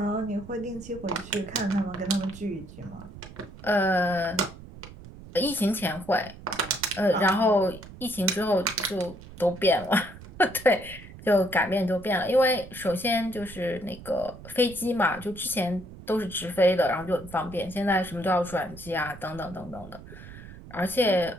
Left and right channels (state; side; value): noise; right; rumble, 16 dB below the sound